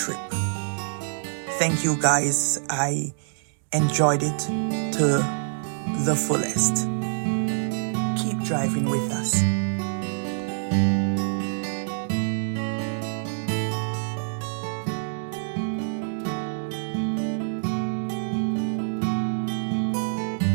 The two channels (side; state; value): left; silent; digital silence